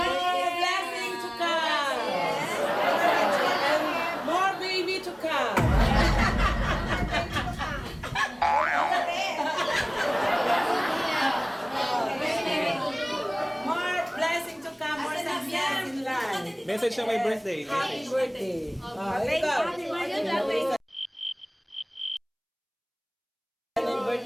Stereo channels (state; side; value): identical; both; correlation 1.00